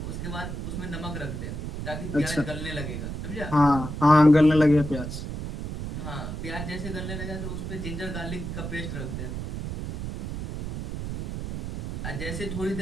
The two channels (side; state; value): right; noise; rumble, 5 dB below the sound